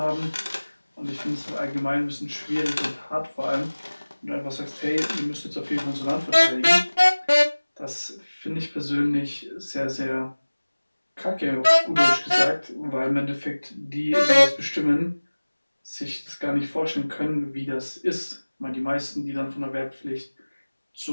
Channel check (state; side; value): inverted; both; correlation -1.00